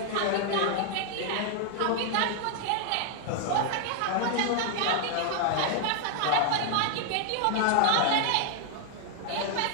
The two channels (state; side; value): different; both; correlation 0.00